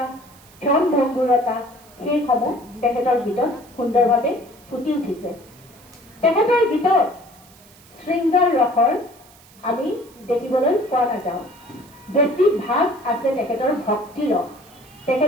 ক্ষণভংগুৰতা সেইসমূহ তেখেতৰ ভিতৰত সুন্দৰভাৱে ফুটি উঠিছে তেখেতৰ গীতত শৃংগাৰ ৰসৰ আমি দেখিবলৈ পোৱা নাযাওঁ। বেছি ভাগ আছে তেখেতৰ ভক্তি ৰস।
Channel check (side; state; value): right; noise; hiss, 25 dB below the sound